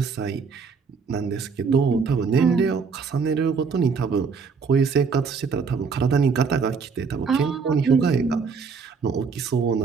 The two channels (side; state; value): left; quieter; 5.4 dB